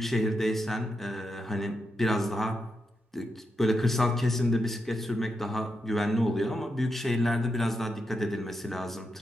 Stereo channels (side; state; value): both; normal; correlation 0.85